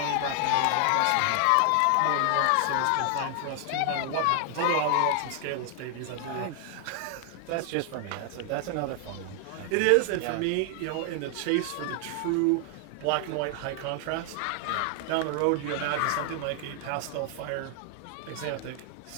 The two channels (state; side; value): different; both; correlation 0.00